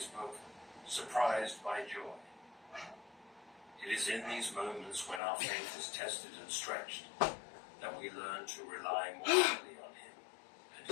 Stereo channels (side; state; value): right; drops out; at 5.2 s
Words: book, Surprised by Joy. It is in these moments when our faith is tested and stretched that we learn to rely more fully on him and